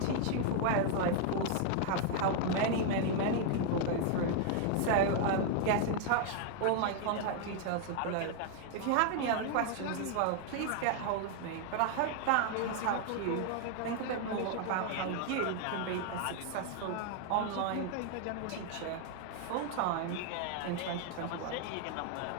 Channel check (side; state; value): both; different; correlation 0.00